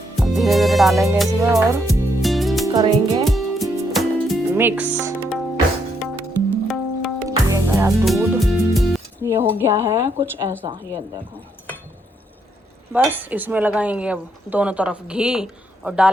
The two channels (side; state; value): both; normal; correlation 0.75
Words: धीरे धीरे डालेंगे इसमें और करेंगे मिक्स। ये गया दूध, ये हो गया है कुछ ऐसा, ये देखो। बस इसमें लगाएंगे अब दोनों तरफ घी और